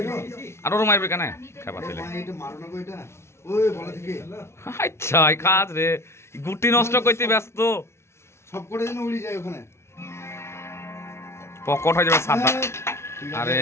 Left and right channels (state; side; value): late; right; 0.13 ms